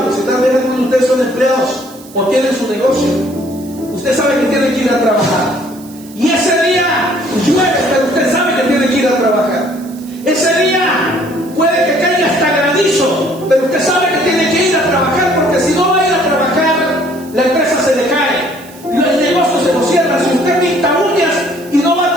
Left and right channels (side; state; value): right; noise; hiss, 22 dB below the sound